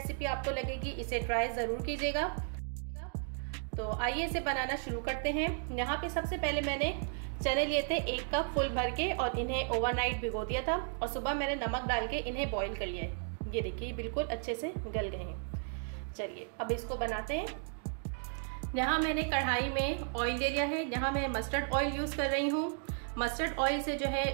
आपको लगेगी, इसे ट्राई ज़रूर कीजिएगा। तो आइए इसे बनाना शुरू करते हैं। यहाँ पे सबसे पहले मैंने चने लिए थे 1 कप फुल भर के और इन्हें ओवरनाइट भिगो दिया था और सुबह मैंने नमक डाल के इन्हें बॉईल कर लिया है। ये देखिए बिल्कुल अच्छे से गल गए हैं। चलिए अब इसको बनाते हैं। यहाँ मैंने कढ़ाई में ऑयल ले लिया है। यहाँ मैं मस्टर्ड ऑयल यूज़ कर रही हूँ। मस्टर्ड ऑयल से जो है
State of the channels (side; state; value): left; silent; 55 dB below the other